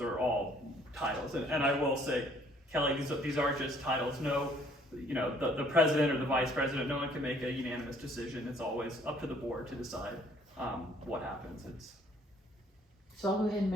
are all titles, and I will say, Kelly, these are just titles. No, the president or the vice president, no one can make a unanimous decision. It's always up to the board to decide what happens. So I'll go ahead and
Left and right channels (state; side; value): normal; both; correlation 0.61